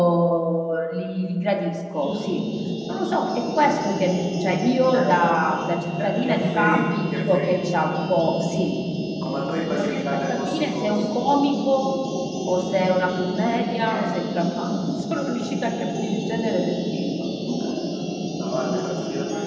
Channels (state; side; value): identical; both; correlation 1.00